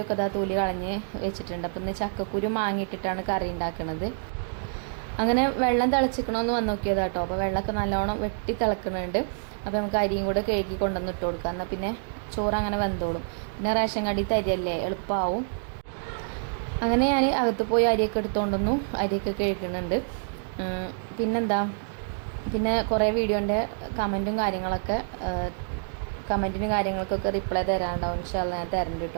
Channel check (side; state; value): left; silent; digital silence